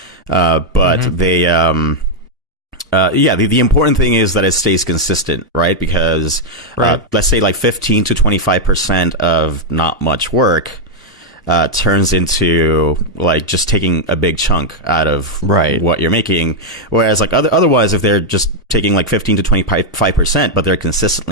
But they, the important thing is that it stays consistent, right? Because, let's say like 15 to 25% of not much work, turns into like just taking a big chunk out of what you're making. Whereas like otherwise, if they're just taking like 15 to 25%, but they're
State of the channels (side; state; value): both; normal; correlation -0.02